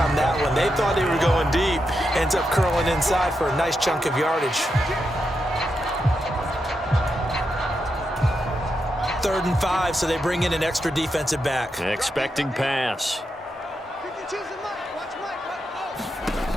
that one. They thought they were going deep. Ends up curling inside for a nice chunk of yardage. 3rd and 5, so they bring in an extra defensive back. Expecting pass.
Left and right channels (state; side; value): normal; both; correlation 0.85